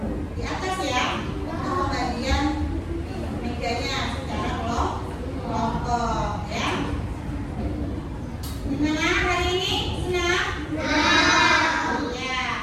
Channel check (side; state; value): both; identical; correlation 1.00